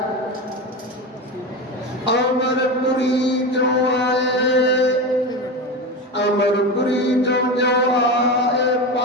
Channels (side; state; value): both; normal; correlation 0.22